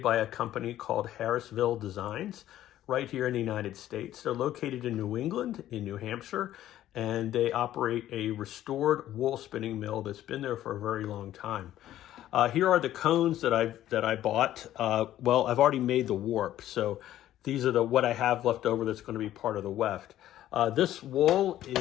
by a company called Harrisville Designs right here in the United States. They're located in New England, in New Hampshire, and they operate a restored wool spinning mill that's been there for a very long time. Here are the cones that I bought. Well, I've already made the warp, so these are what I have left over that's going to be part of the weft. This wool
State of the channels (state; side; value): quieter; right; 12.9 dB